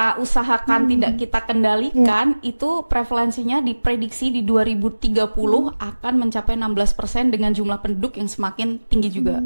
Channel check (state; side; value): inverted; both; correlation -1.00